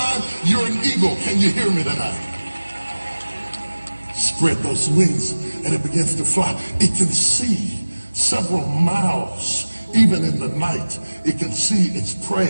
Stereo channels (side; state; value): both; inverted; correlation -1.00